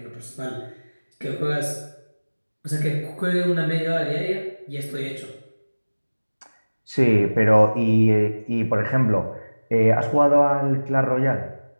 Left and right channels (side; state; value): both; inverted; correlation -1.00